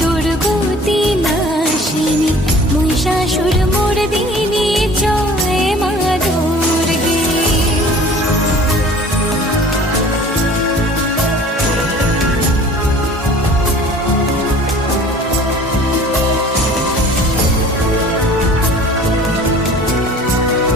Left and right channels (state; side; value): normal; both; correlation 0.47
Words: দুর্গতি নাশিনী মহিষাসুর মর্দিনী জয় মা দুর্গে।